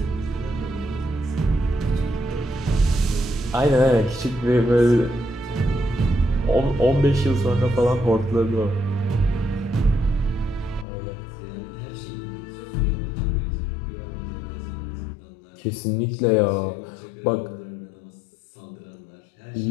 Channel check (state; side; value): drops out; right; at 10.9 s